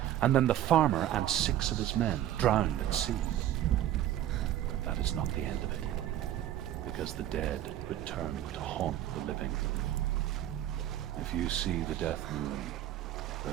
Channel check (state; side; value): quieter; left; 12.3 dB